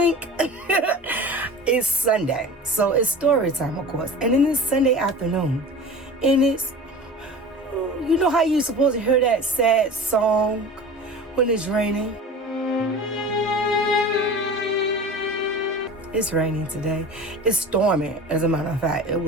It's Sunday, so it's story time, of course. And then it's Sunday afternoon, and it's, you know how you're supposed to hear that sad song when it's raining? It's raining today. It's storming, as a matter of fact. It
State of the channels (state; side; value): normal; both; correlation 0.36